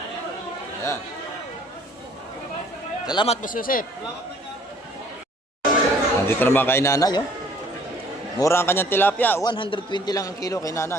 Ayan. Salamat, Boss Joseph. Nandito naman kay nanay, oh. Mura ang kanyang tilapia. 120 lang ang kilo kay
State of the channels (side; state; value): both; normal; correlation 0.57